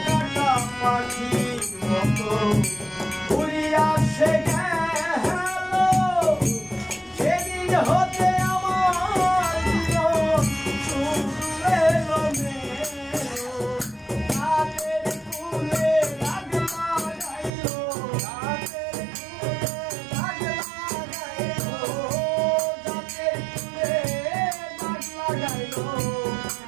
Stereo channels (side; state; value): left; drops out; at 17.5 s